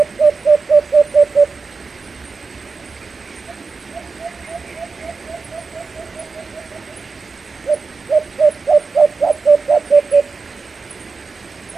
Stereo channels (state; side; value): quieter; left; 4.5 dB